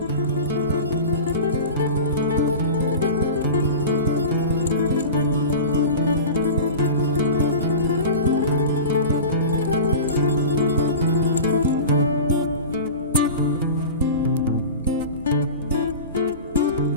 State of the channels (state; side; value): inverted; both; correlation -0.32